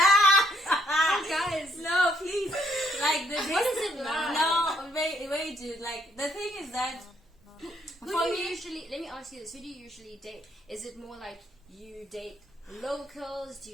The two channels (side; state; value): both; normal; correlation 0.70